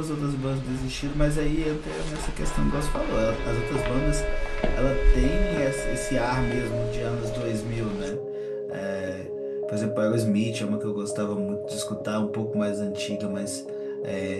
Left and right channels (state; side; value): identical; both; correlation 1.00